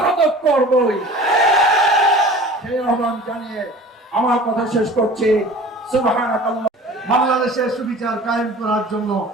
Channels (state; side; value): normal; both; correlation 0.42